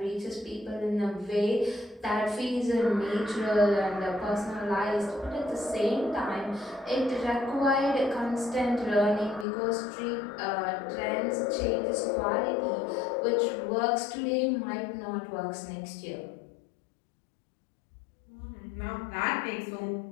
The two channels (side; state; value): right; drops out; at 9.5 s